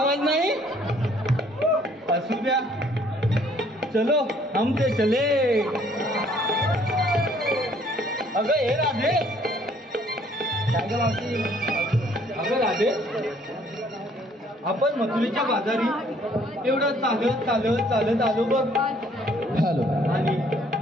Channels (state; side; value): normal; both; correlation 0.61